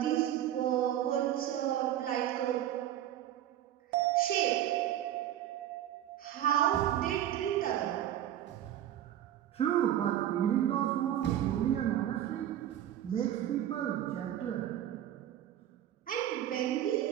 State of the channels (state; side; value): quieter; left; 11.7 dB